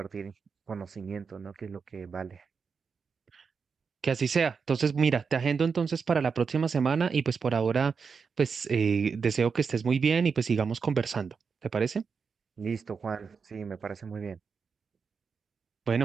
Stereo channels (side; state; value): left; quieter; 5.6 dB